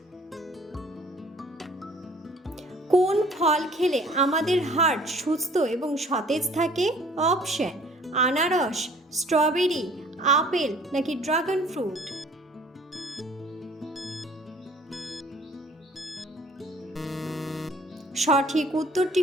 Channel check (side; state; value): both; normal; correlation 0.54